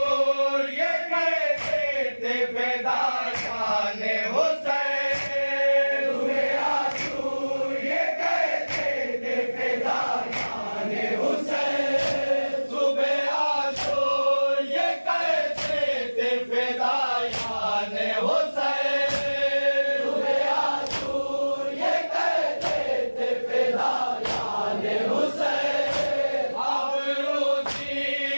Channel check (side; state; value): both; inverted; correlation -1.00